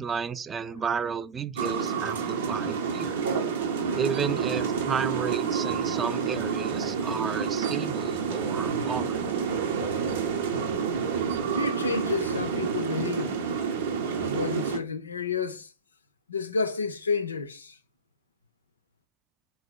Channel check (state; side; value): quieter; left; 4.0 dB